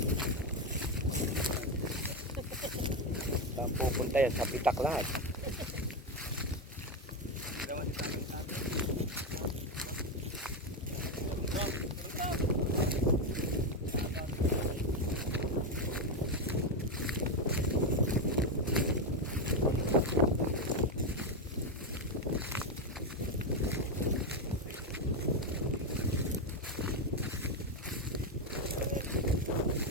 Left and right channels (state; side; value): normal; both; correlation 0.09